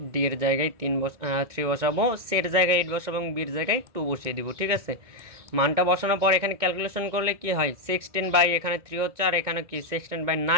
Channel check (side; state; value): left; late; 2.2 ms